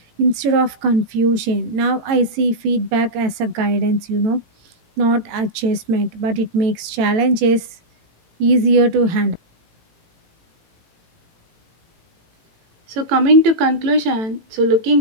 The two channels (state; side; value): late; left; 18 ms